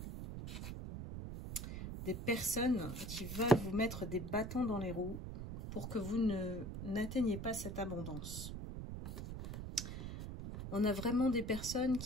Des personnes qui veulent vous mettre des bâtons dans les roues pour que vous n'atteigniez pas cette abondance. On a vraiment des personnes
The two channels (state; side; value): noise; right; rumble, 7 dB below the sound